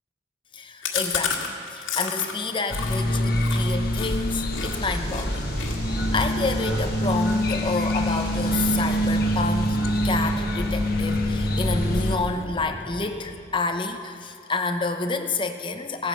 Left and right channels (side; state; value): both; normal; correlation 0.57